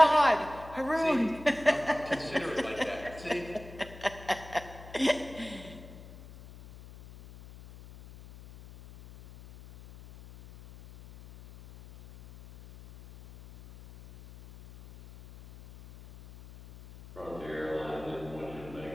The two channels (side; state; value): left; noise; hum, 17 dB below the sound